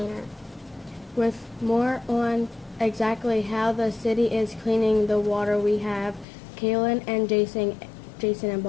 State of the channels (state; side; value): drops out; right; at 6.2 s